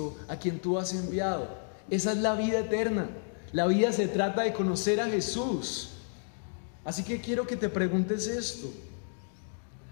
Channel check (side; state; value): right; silent; digital silence